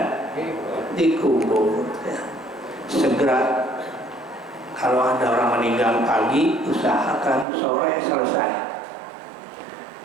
dikubur. Ya. Segera. Kalau ada orang meninggal pagi, usahakan sore selesai.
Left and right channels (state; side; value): drops out; left; at 7.5 s